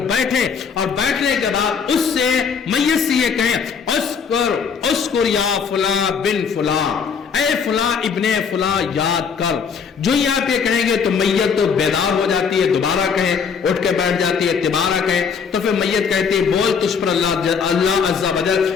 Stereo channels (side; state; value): right; quieter; 6.2 dB